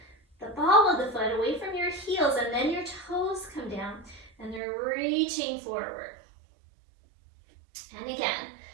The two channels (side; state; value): left; drops out; at 4.6 s